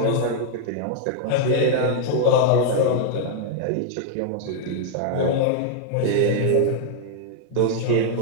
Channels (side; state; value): both; different; correlation 0.00